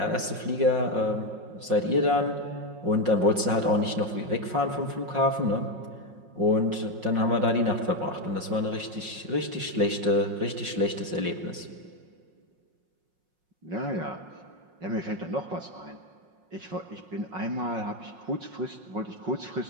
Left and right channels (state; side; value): late; left; 5.5 ms